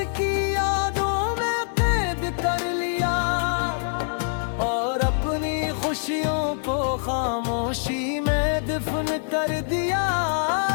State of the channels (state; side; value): silent; right; digital silence